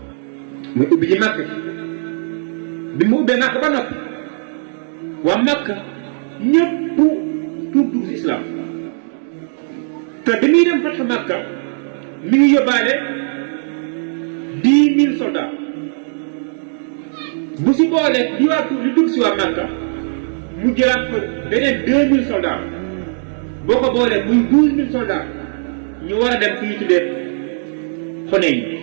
muy ubbi ji Makka bi mu ubbee Makka ba noppi waa Makka ñëpp tuub dugg si islam te bi muy dem Fathu Makka mi ngi yóbbaale 10 000 soldats bu si boolee di waa tuub li dugg si waa Makka mu jëlaat fa beneen 2000 soldats boo ko boolee muy 12000 soldats ñu war a dem fi ñu tuddee Xunayn.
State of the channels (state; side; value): silent; left; digital silence